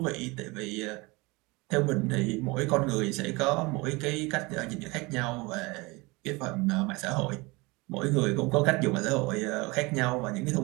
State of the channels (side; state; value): left; quieter; 24.9 dB